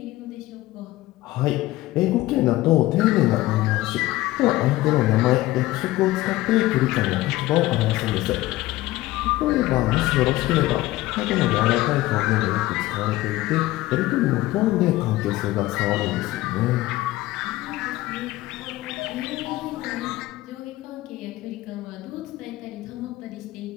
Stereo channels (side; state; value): right; quieter; 17.4 dB